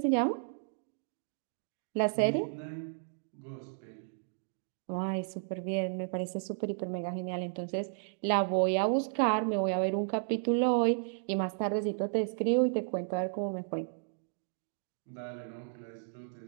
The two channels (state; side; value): silent; left; digital silence